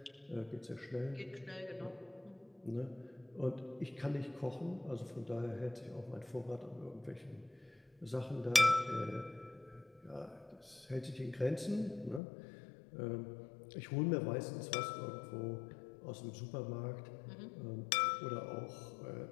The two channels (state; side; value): drops out; right; at 12.2 s